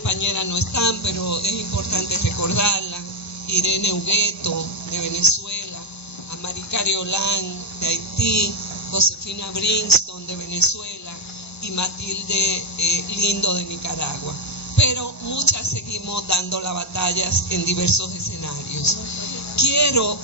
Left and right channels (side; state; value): both; normal; correlation -0.02